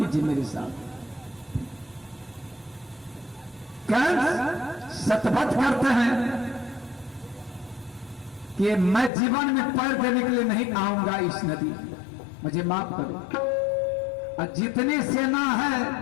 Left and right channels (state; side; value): drops out; right; at 9.1 s